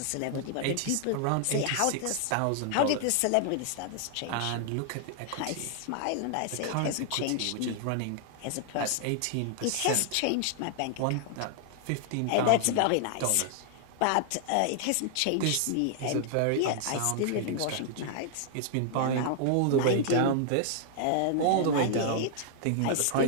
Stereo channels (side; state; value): both; different; correlation 0.00